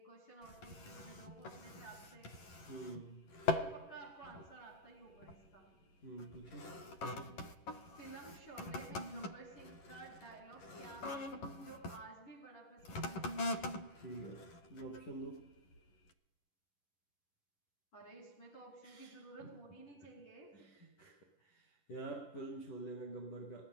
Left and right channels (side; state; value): right; late; 11 ms